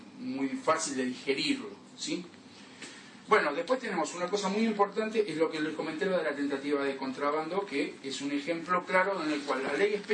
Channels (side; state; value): both; identical; correlation 1.00